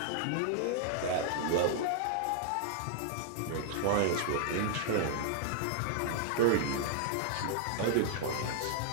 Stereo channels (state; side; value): different; both; correlation -0.01